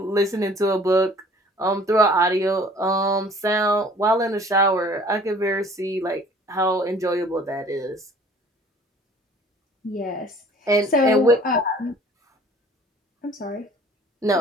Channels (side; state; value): both; normal; correlation 0.52